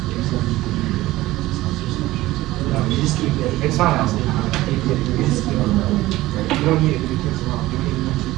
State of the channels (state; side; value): quieter; left; 17.3 dB